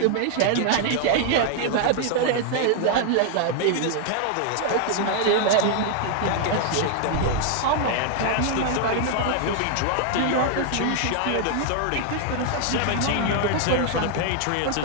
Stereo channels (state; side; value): different; both; correlation 0.00